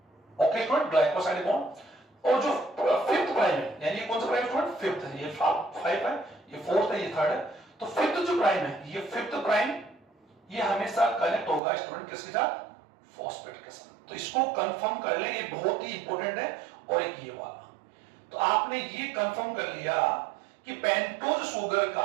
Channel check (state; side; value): drops out; left; at 11.6 s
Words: Okay student, glycosidic bond. और जो फिफ्थ प्राइम है यानी ये कौन सा प्राइम स्टूडेंट, फिफ्थ है, ये 5 है, ये फोर्थ है, ये थर्ड है। तो फिफ्थ जो प्राइम है, ये फिफ्थ प्राइम ये हमेशा कनेक्ट होगा स्टूडेंट किसके साथ, फॉस्फेट के साथ। तो इसको कंफर्म कर ले, ये बहुत ही इंपॉर्टेंट है। और एक ये वाला, तो आपने ये कंफर्म कर लिया कि पेंटोज शुगर